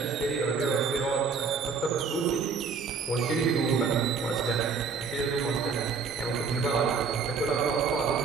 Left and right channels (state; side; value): quieter; left; 5.5 dB